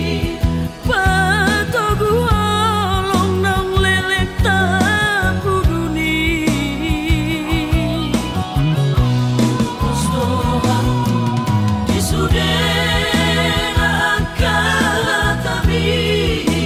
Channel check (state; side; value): identical; both; correlation 1.00